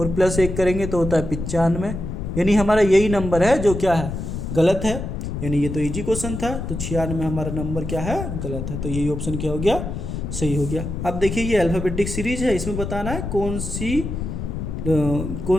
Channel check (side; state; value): left; noise; rumble, 5 dB below the sound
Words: +1 करेंगे तो होता है 95। यानी हमारा यही नंबर है जो क्या है, गलत है। यानी ये तो इजी क्वेश्चन था, तो 96 में हमारा नंबर क्या है, गलत है। तो यही ऑप्शन क्या हो गया, सही हो गया। अब देखिए ये अल्फ़ाबेटिक सीरीज है, इसमें बताना है कौन